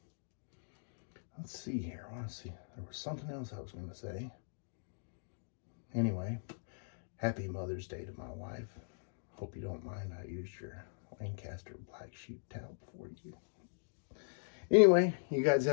let's see here. I want to see. There was something else I was going to say. Anyway, happy Mother's Day to my wife. Hope you don't mind I used your Lancaster black sheep towel for you. Anyway, you guys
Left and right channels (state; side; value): silent; right; digital silence